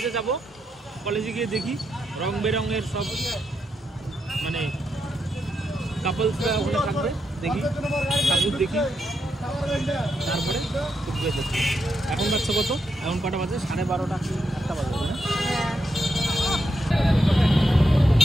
যাব, কলেজে গিয়ে দেখি রং বেরঙের সব মানে কাপলসরা ওখানে থাকবে, দেখি ঠাকুর দেখি, তারপরে কুচবিহার যাচ্ছি। এখন বাচ্চা কত, এখন কটা বাজে? 12:30 একটা বাজে না?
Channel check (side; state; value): both; normal; correlation 0.83